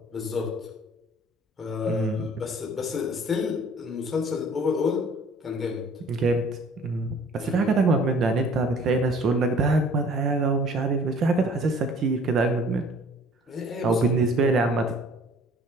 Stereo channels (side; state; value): both; normal; correlation 0.52